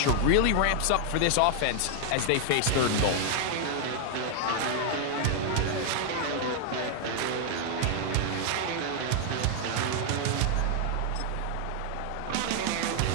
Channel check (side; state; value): both; different; correlation 0.00